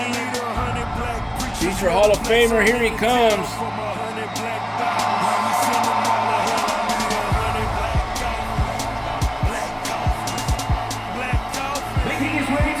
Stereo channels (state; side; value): identical; both; correlation 1.00